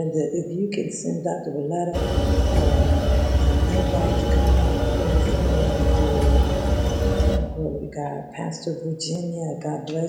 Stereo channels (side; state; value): both; identical; correlation 1.00